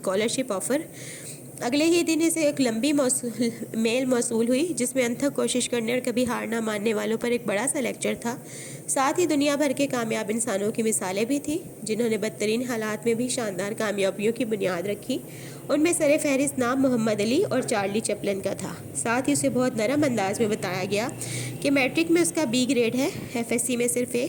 ऑफ़र। अगले ही दिन इसे एक लंबी मेल मौसूल हुई जिसमें अनथक कोशिश करने और कभी हार ना मानने वालों पर एक बड़ा सा लेक्चर था। साथ ही दुनिया भर के कामयाब इंसानों की मिसालें भी थी जिन्होंने बदतरीन हालात में भी शानदार कामयाबियों की बुनियाद रखी। उनमें सरे फहरिस्त नाम मोहम्मद अली और चार्ली चैपलिन का था। साथ ही उसे बहुत नरम अंदाज में बताया गया कि मैट्रिक में उसका बी ग्रेड है, FSC में सिर्फ A,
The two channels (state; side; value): identical; both; correlation 1.00